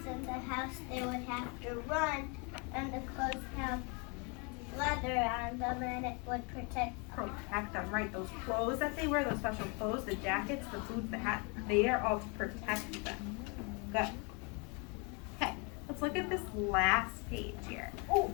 in the house, they would have to run, and the clothes have leather on them, and it would protect. Protect them, right? Those clothes that they wear, those special clothes, the jackets, the boots, the hat, they are all to protect them. Good. Okay, let's look at this last page here. Oh,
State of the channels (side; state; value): right; quieter; 32.7 dB